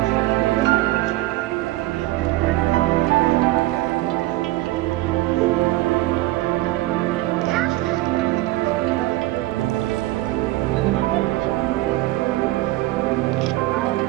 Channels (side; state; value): left; quieter; 17.9 dB